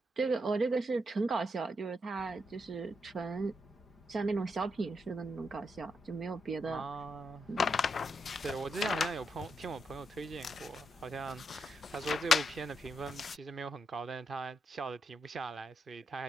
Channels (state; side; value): normal; both; correlation 0.82